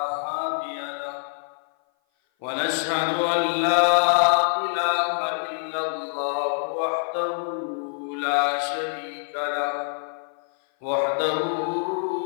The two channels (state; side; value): silent; right; 56 dB below the other